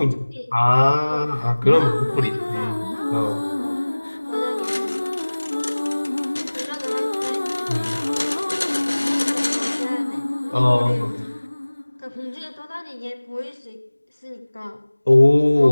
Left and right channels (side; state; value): both; inverted; correlation -1.00